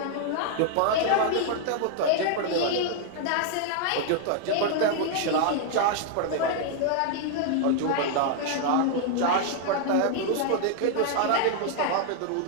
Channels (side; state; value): both; different; correlation 0.00